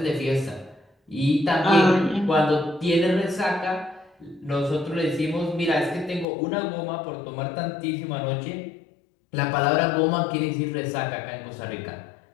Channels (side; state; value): right; drops out; at 6.2 s